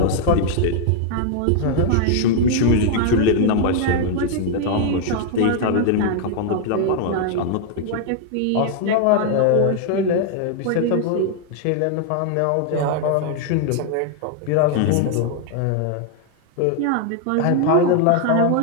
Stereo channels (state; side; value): different; both; correlation 0.00